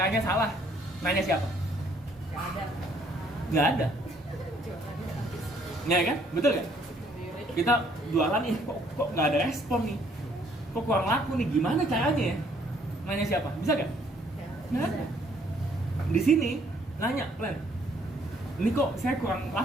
salah, nanya siapa? Nggak ada, ya kan, betul kan? Kita jualan nih, kok nggak ada respon nih, kok kurang laku nih, gimana caranya ya? Nanya siapa? Bisa gak? Nggak ada. Di sini nanya plan, ini kok saya kurang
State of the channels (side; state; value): both; normal; correlation 0.64